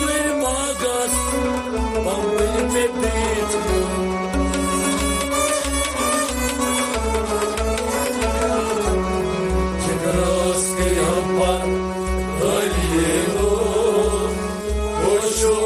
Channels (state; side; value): identical; both; correlation 1.00